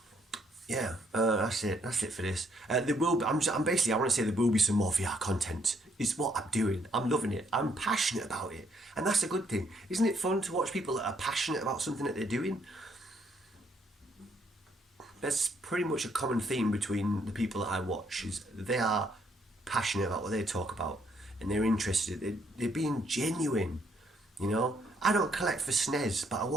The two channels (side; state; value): both; normal; correlation 0.70